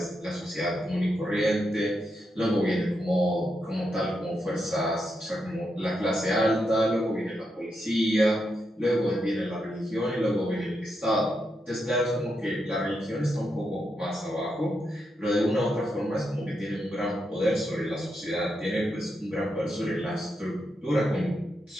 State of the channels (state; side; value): normal; both; correlation 0.83